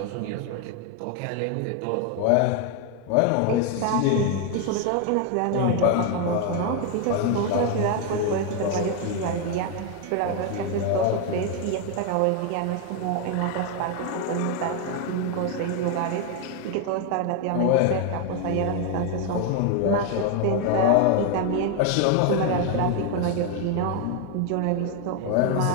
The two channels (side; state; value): both; different; correlation 0.01